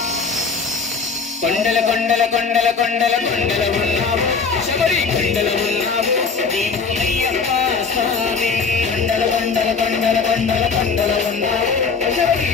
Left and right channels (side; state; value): right; quieter; 5.0 dB